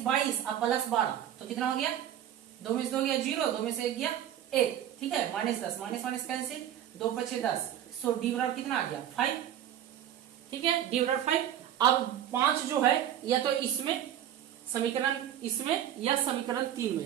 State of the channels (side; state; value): left; quieter; 10.9 dB